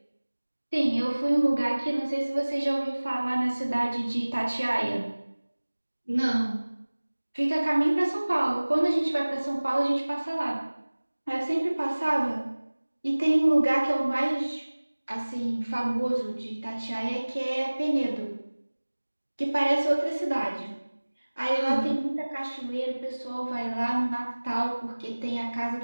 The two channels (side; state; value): both; inverted; correlation -1.00